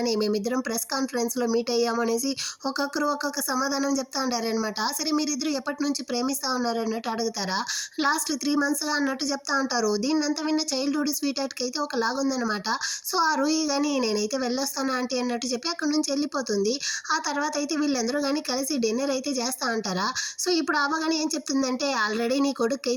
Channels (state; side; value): identical; both; correlation 1.00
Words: మేమిద్దరం ప్రెస్ కాన్ఫరెన్స్లో మీట్ అయ్యాము అనేసి ఒక్కొక్కరు ఒక్కొక్క సమాధానం చెప్తా ఉంటారనమాట. సరే మీరిద్దరు ఎప్పటి నుంచి ప్రేమిస్తూ ఉన్నారు అన్నట్టు అడుగుతారా, లాస్ట్ 3 monthsగా అన్నట్టు చెప్తా ఉంటారు. దీన్నంతా విన్న చైల్డ్హుడ్ స్వీట్ హార్ట్కి అయితే ఒక లాగుందనమాట. సో ఆ రూహి కానీ నేనైతే వెళ్ళొస్తాను ఆంటీ అన్నట్టు చెప్పి అక్కడి నుంచి వెళ్ళిపోతుంది. ఆ తర్వాత అయితే వీళ్ళందరూ కానీ కలిసి డిన్నర్ అయితే చేస్తూ ఉంటారా. సో ఇప్పుడు అవ్వ కానీ ఏం చెప్తుందంటే, ఆల్రెడీ నీ కొడుకు